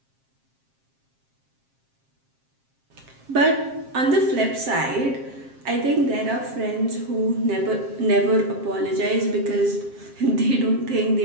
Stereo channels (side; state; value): left; late; 7.5 ms